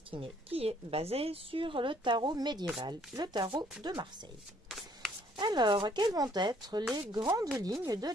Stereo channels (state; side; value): normal; both; correlation 0.63